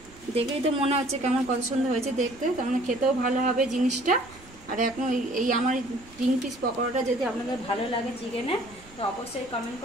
দেখেই তো মনে হচ্ছে কেমন কত সুন্দর হয়েছে দেখতে, তার মানে খেতেও ভালো হবে জিনিসটা। আর এখন এই আমার 3 পিস পকোড়াটা যদি আপনাদের ভালো লাগে চিকেনে, তো অবশ্যই কমেন্ট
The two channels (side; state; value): right; noise; rumble, 22 dB below the sound